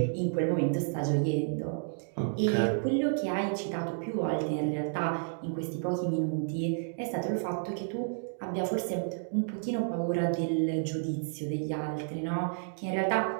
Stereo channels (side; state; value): left; silent; digital silence